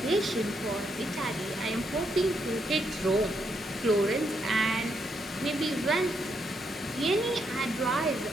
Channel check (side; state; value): both; normal; correlation 0.78